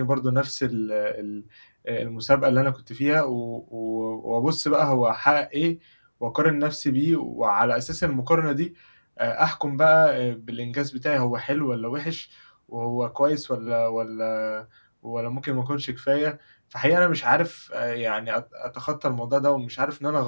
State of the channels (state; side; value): inverted; both; correlation -1.00